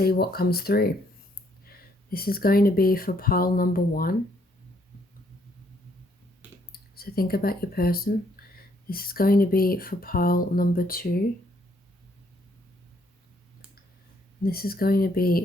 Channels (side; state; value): both; normal; correlation 0.69